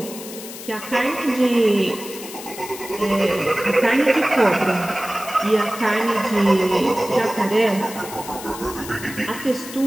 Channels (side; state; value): left; noise; hiss, 12 dB below the sound